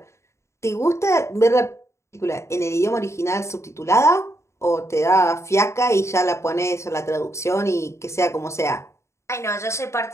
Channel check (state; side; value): late; right; 0.14 ms